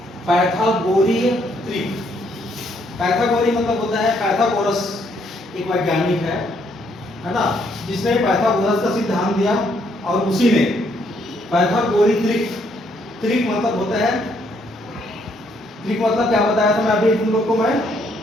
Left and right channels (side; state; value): both; normal; correlation 0.71